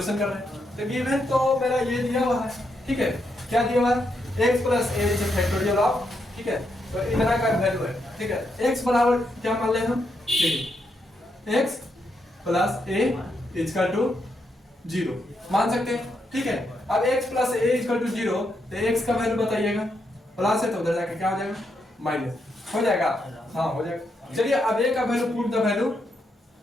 कर रहे हैं, तो गिवन तो मेरा ये दिया हुआ है, ठीक है। क्या दिया हुआ है, x plus A is factorial of, ठीक है। तो इतना का वैल्यू है, ठीक है। x बराबर क्या मान ले हम, देखिए x plus a equal to 0 मान सकते हैं, ठीक है। अब x plus a equal to 0, तो x का वैल्यू बताइएगा, प्लस है तो उधर जाके क्या हो जाएगा, माइनस हो जाएगा, हाँ हो जाएगा। चलिए अब a का value, put the value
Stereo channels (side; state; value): both; normal; correlation 0.80